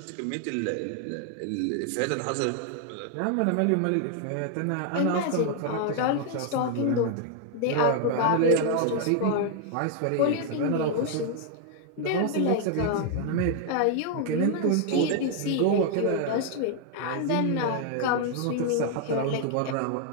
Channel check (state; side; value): different; both; correlation 0.00